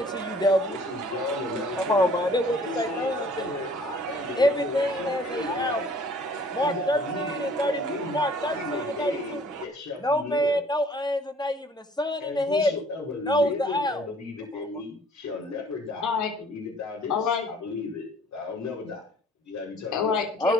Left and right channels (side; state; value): both; normal; correlation 0.55